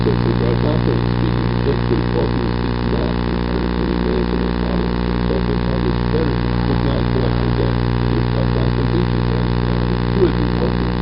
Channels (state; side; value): identical; both; correlation 1.00